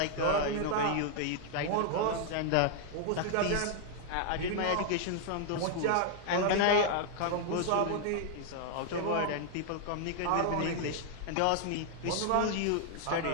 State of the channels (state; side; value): different; both; correlation 0.00